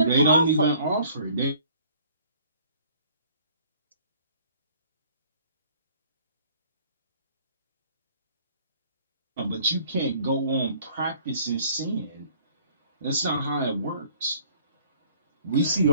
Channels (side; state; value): both; inverted; correlation -0.56